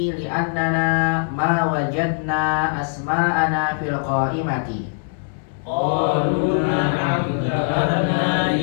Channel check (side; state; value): right; silent; 65 dB below the other